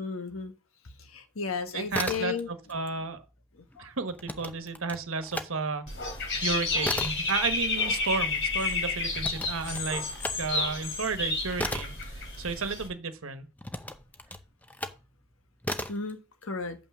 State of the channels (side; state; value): both; normal; correlation 0.02